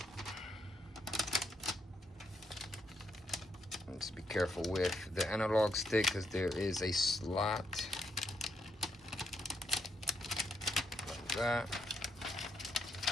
Just be careful with the analog stick because there is a slot like that.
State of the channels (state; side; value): normal; both; correlation 0.77